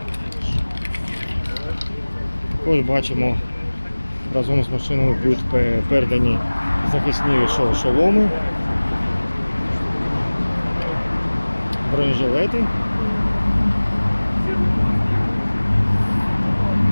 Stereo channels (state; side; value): inverted; both; correlation -1.00